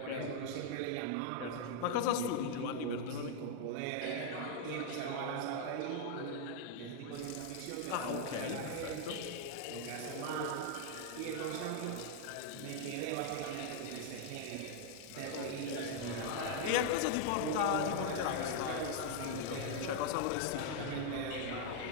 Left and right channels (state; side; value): different; both; correlation 0.00